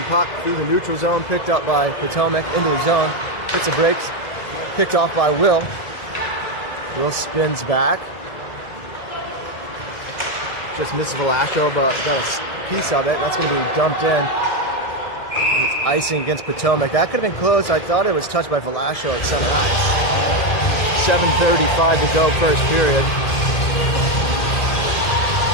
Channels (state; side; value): late; right; 1.9 ms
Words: puck through the neutral zone, picked up by Potomac into the zone. Hits the brakes, picked off by Will. Will spins back. Just misses Velasco, but got a piece of it. That's going to be dumped in. It's icing against Potomac. That could have been close. I thought it was touched by Velasco at center ice. 7:35 to go, first period.